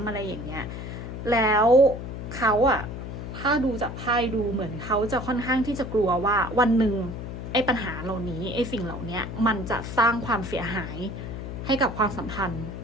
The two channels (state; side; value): noise; left; hum, 8 dB below the sound